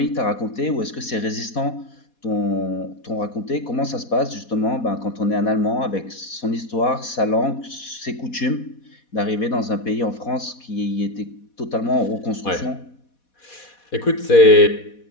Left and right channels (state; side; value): late; right; 4.2 ms